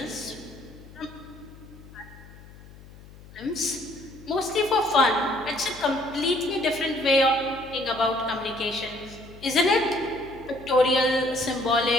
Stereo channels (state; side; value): noise; left; hum, 20 dB below the sound